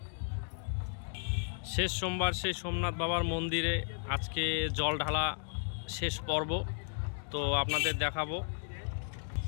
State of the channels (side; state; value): right; silent; digital silence